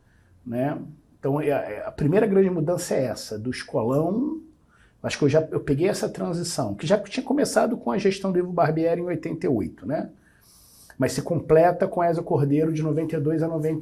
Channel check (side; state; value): both; identical; correlation 1.00